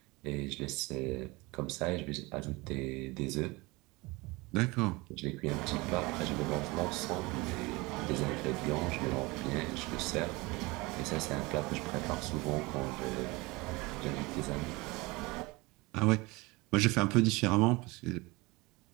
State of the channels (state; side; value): quieter; left; 23.9 dB